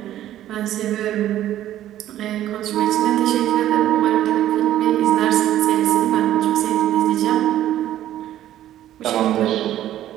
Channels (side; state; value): left; quieter; 12.6 dB